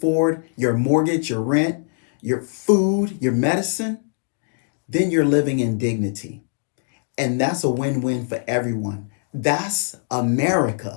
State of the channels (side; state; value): right; silent; digital silence